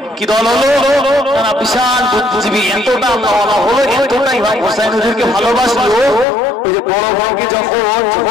কি দল হলো তারা বিশাল বুদ্ধিজীবী এতটা আল্লাহওয়ালা হলো এতটা ইমাম হোসাইন হুজুরকে ভালোবাসলো ওই যে বড় বড়কে যখন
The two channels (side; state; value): right; drops out; at 6.2 s